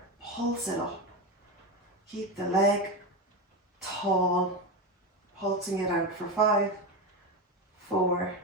pulse it up. Keep the leg tall, pulsing it out for 5, 4,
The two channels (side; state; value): both; normal; correlation 0.16